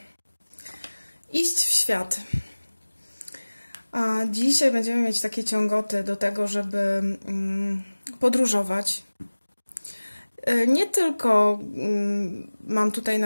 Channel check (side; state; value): both; inverted; correlation -1.00